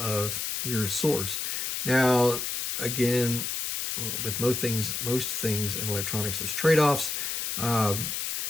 your source. Now, again, with most things in electronics, there's trade-offs.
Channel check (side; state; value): left; noise; hiss, 2 dB below the sound